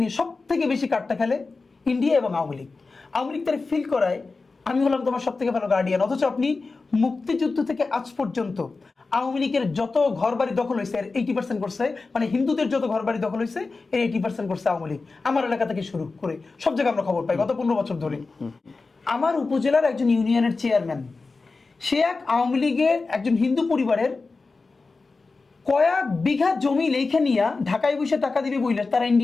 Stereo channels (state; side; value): quieter; right; 3.9 dB